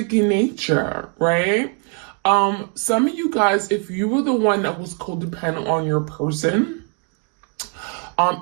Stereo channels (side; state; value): left; quieter; 39.9 dB